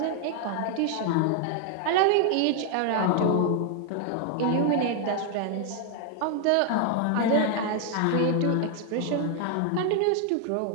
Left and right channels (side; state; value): both; different; correlation 0.00